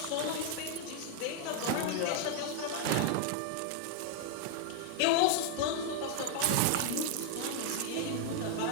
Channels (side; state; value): both; different; correlation 0.00